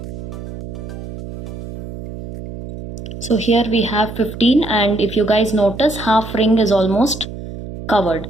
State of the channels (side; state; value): right; noise; hum, 10 dB below the sound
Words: So here we have 15, and if you guys notice, half ring is almost covered.